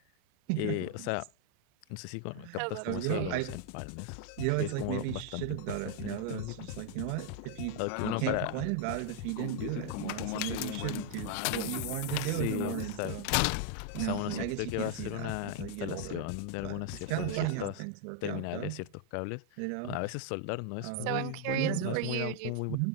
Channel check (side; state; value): both; different; correlation 0.00